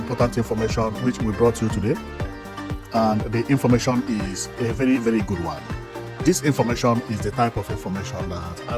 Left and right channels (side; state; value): both; identical; correlation 1.00